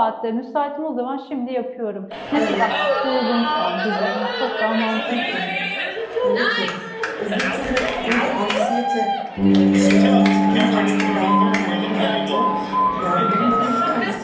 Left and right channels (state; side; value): identical; both; correlation 1.00